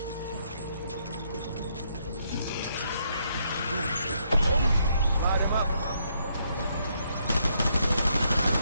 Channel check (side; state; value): both; inverted; correlation -0.74